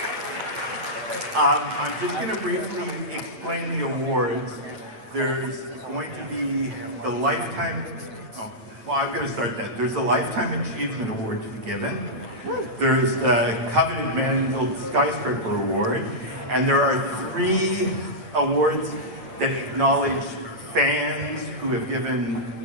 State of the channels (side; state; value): left; late; 9.1 ms